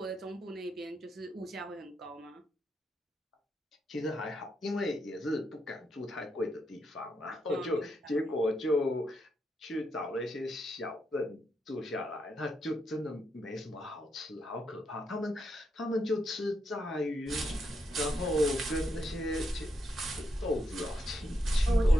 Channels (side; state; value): both; normal; correlation 0.81